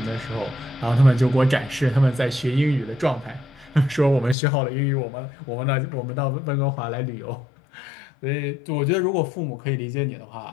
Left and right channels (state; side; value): drops out; right; at 4.4 s